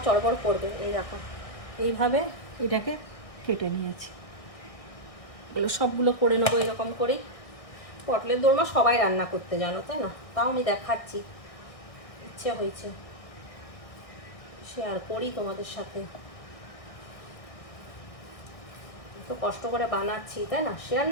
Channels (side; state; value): right; late; 1.6 ms